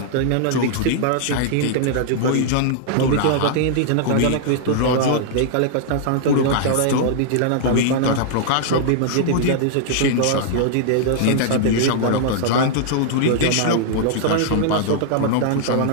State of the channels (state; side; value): different; both; correlation -0.01